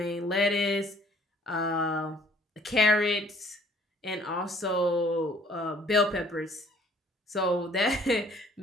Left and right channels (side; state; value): both; normal; correlation 0.58